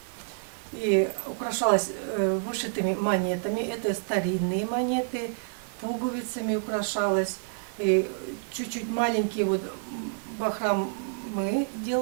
И украшалось вышитыми монетами, это старинные монеты, пуговицами украшалось. И чуть-чуть маленькие вот бахромы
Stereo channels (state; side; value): silent; left; digital silence